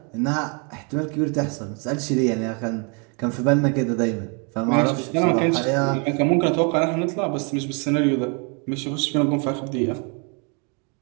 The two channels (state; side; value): quieter; left; 35.6 dB